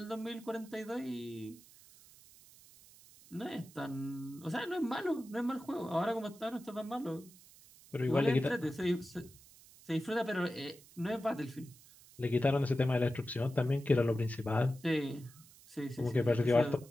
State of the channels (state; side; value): noise; right; hiss, 23 dB below the sound